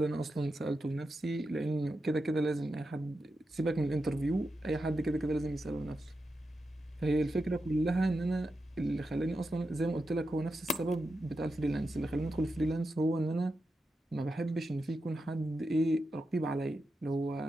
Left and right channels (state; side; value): normal; both; correlation 0.88